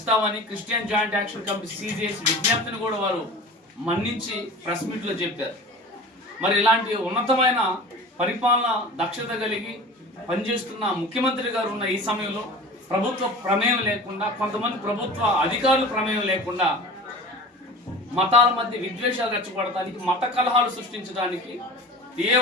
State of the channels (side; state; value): both; normal; correlation 0.38